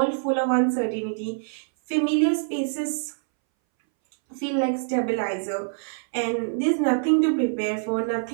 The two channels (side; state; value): left; silent; 62 dB below the other